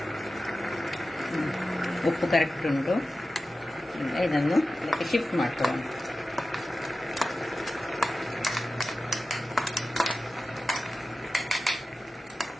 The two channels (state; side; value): normal; both; correlation 0.94